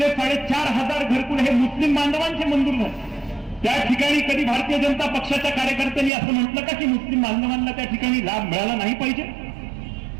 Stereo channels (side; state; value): left; drops out; at 6.1 s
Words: 4,500 घरकुल हे मुस्लिम बांधवांचे मंजूर झाले। त्या ठिकाणी कधी भारतीय जनता पक्षाच्या कार्यकर्त्यांनी असं म्हटलं का की मुस्लिम बांधवांना त्या ठिकाणी लाभ मिळाला नाही पाहिजे?